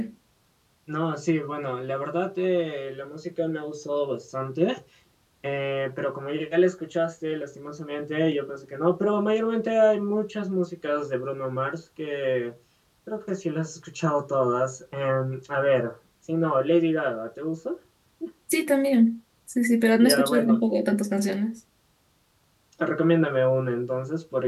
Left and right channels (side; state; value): both; identical; correlation 1.00